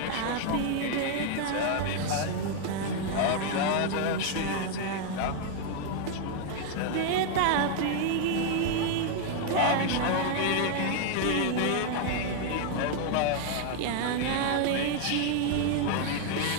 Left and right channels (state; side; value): different; both; correlation 0.00